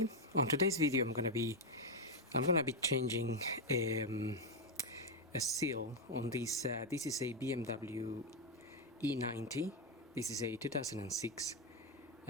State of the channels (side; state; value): both; normal; correlation 0.04